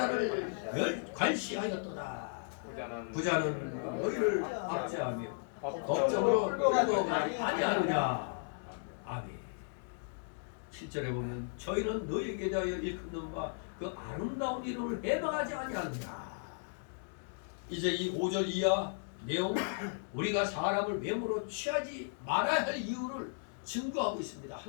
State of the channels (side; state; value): right; silent; digital silence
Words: 관시하였도다. 부자는 너희를 압제하며 법정으로 끌고 가지 아니하느냐. 아멘. 7절에 보면 저희는 너희에게 대하여 일컫는 바 그 아름다운 이름을 해방하지 아니하느냐. 이제 이 5절 이하 내용 우리가 사람을 외모로 취하지 말아야 할 이유를 증거하고 있습니다.